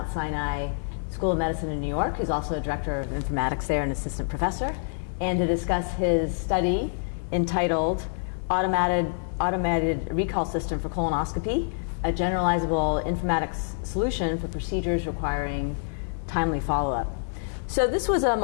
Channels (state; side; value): silent; right; digital silence